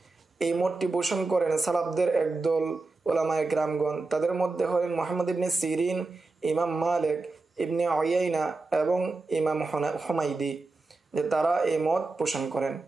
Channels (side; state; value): left; quieter; 3.5 dB